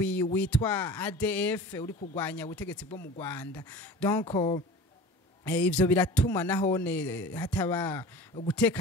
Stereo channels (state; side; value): normal; both; correlation 0.38